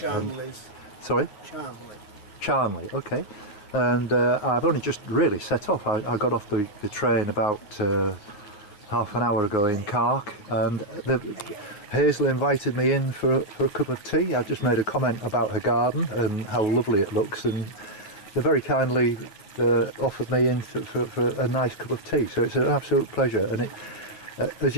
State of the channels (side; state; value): right; late; 9.5 ms